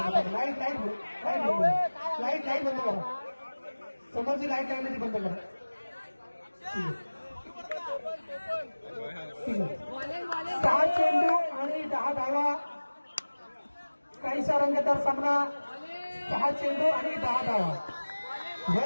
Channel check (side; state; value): both; inverted; correlation -1.00